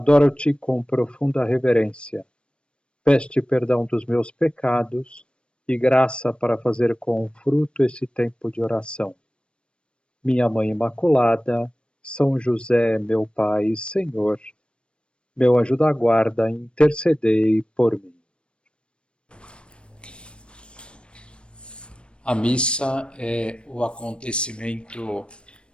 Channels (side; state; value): right; late; 0.056 ms